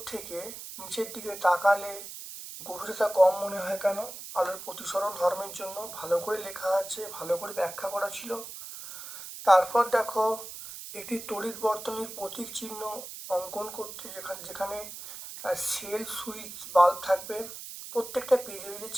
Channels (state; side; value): noise; right; hiss, 11 dB below the sound